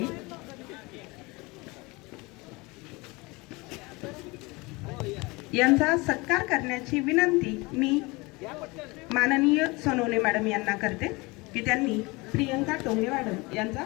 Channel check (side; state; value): right; quieter; 24.6 dB